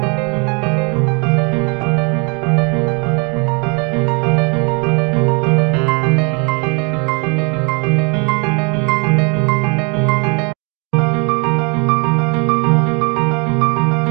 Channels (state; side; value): quieter; left; 33.3 dB